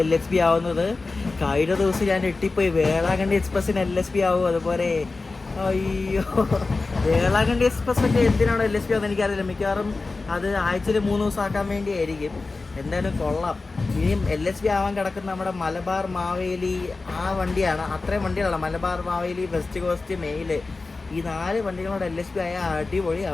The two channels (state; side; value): quieter; right; 3.7 dB